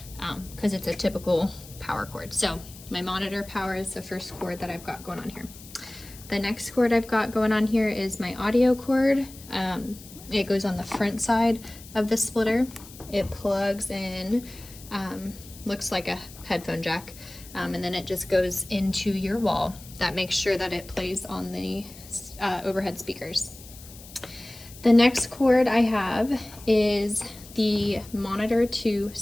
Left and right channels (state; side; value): noise; left; hiss, 18 dB below the sound